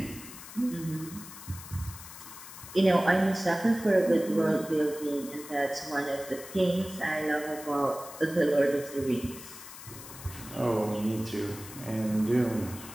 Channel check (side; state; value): left; noise; hiss, 14 dB below the sound